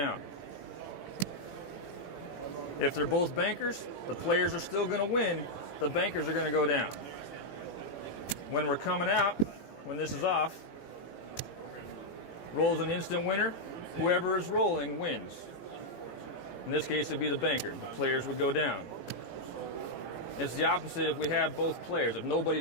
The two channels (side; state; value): right; late; 18 ms